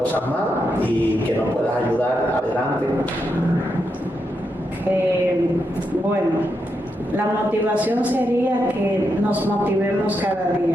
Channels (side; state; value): both; normal; correlation 0.84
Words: más, y que nos puedas ayudar adelante. Bueno, la motivación sería que nos motivemos cada